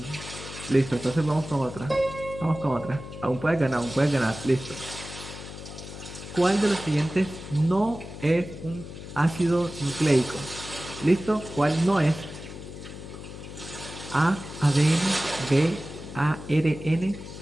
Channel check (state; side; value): noise; left; hum, 12 dB below the sound